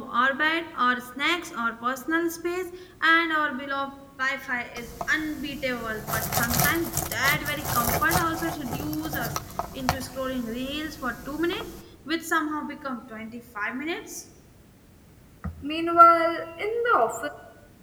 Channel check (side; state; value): both; identical; correlation 1.00